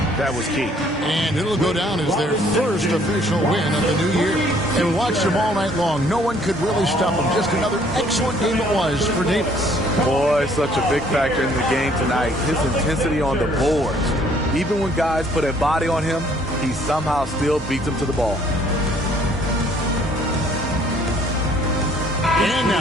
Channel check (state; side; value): normal; both; correlation 0.61